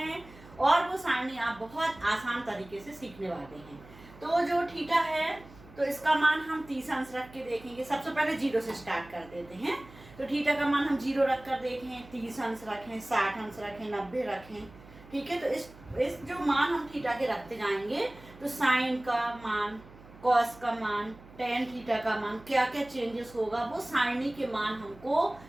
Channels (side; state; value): right; noise; hum, 21 dB below the sound